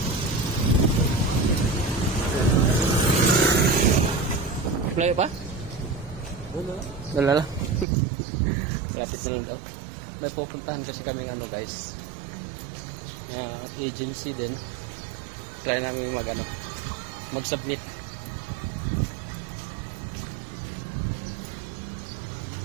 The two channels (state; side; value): drops out; left; at 7.9 s